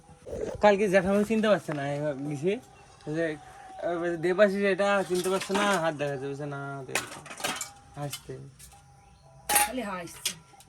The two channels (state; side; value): identical; both; correlation 1.00